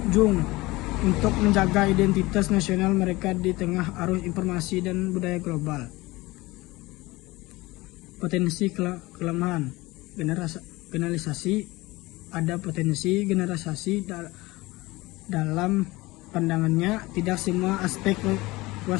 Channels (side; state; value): right; quieter; 20.9 dB